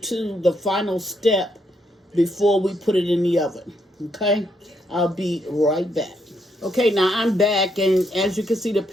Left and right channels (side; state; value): both; normal; correlation 0.76